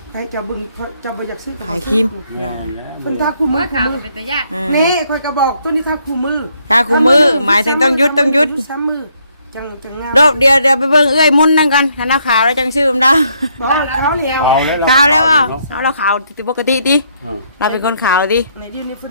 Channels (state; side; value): inverted; both; correlation -0.71